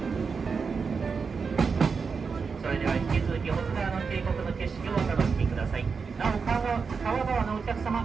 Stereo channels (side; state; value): left; quieter; 5.3 dB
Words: それでは引き続き保津川の渓谷の景色をお楽しみください。なお川側のお客